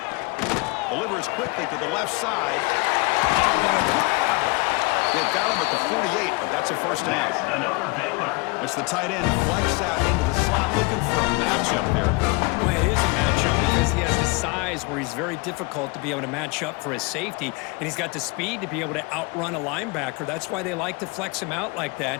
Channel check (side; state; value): right; quieter; 27.2 dB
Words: Delivers quickly to the left side. Oh, what a grab! They've got him at the 48, but that's a first down. Another Baylor. It's the tight end flex out into the slot looking for a matchup there. Well, it is a matchup because he has the size where he's very difficult to be able to match up for his safety, and he's got the speed to be able to outrun a linebacker. That's why they like to flex him out like